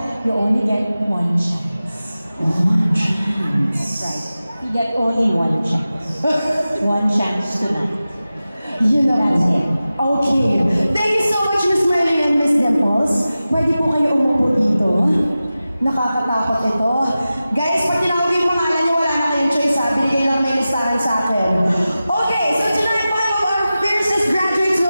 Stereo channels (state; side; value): inverted; both; correlation -0.95